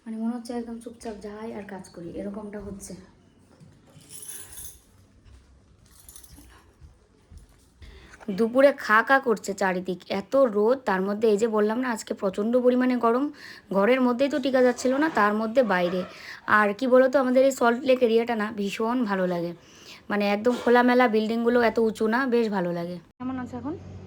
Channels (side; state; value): both; identical; correlation 1.00